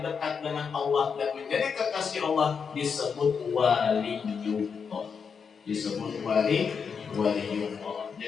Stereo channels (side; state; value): right; quieter; 6.1 dB